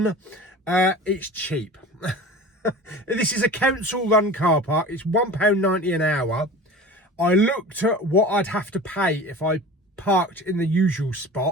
It's cheap. This is a council-run car park. It's £1.90 an hour. I looked at what I'd have to pay if I parked in the usual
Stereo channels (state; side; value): normal; both; correlation 0.37